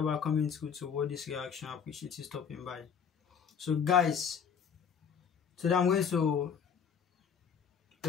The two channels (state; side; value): quieter; right; 7.1 dB